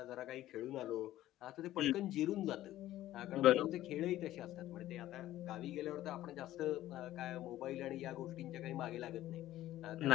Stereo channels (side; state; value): right; quieter; 14.3 dB